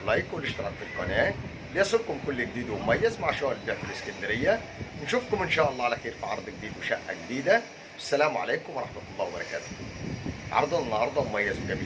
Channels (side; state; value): both; identical; correlation 1.00